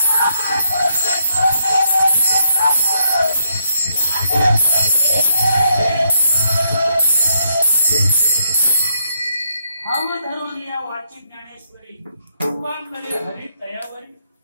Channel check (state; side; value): inverted; both; correlation -0.76